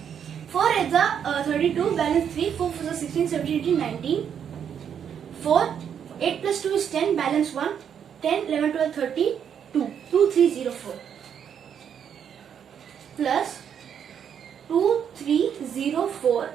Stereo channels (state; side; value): quieter; left; 8.3 dB